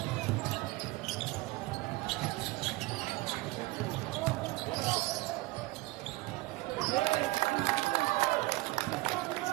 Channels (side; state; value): left; quieter; 20.6 dB